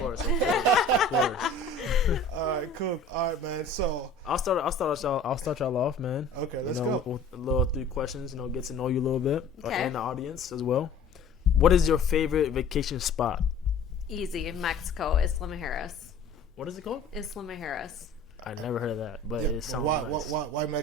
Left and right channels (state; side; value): quieter; right; 3.5 dB